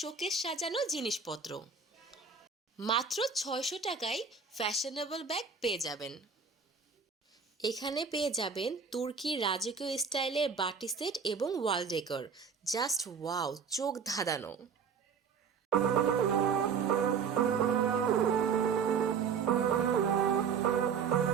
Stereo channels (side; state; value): left; quieter; 6.0 dB